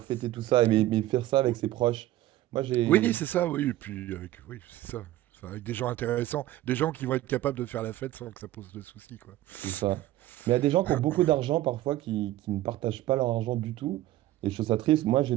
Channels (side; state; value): left; quieter; 15.2 dB